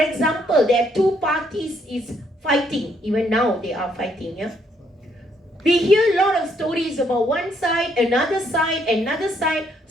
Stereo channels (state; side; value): normal; both; correlation 0.71